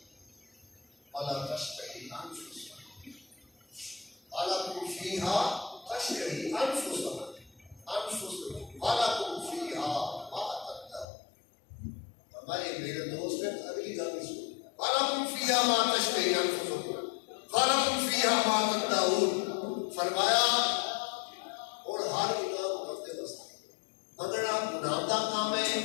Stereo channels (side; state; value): right; drops out; at 11.1 s